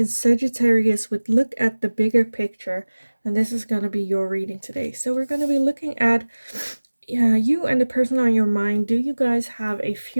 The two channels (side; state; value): both; inverted; correlation -1.00